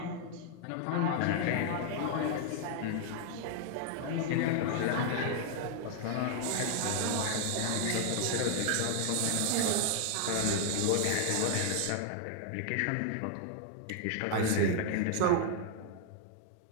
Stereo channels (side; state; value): both; different; correlation 0.00